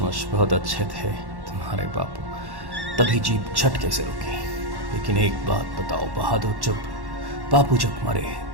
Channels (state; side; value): late; left; 1.1 ms